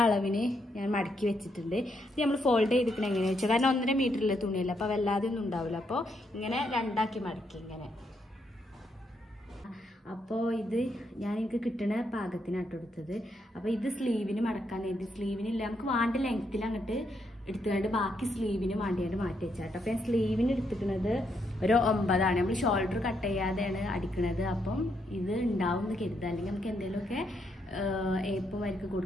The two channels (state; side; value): normal; both; correlation 0.77